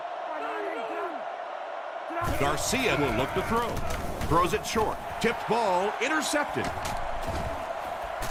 Garcia will look to throw. Throws it short. Tipped ball, intercepted.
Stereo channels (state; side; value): identical; both; correlation 1.00